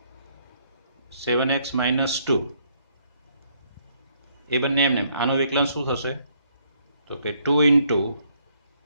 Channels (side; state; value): both; inverted; correlation -0.70